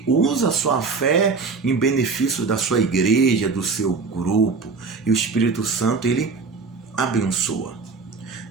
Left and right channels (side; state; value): left; quieter; 4.6 dB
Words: usa a sua fé em benefício da sua igreja, do seu grupo. E o Espírito Santo, ele abençoa.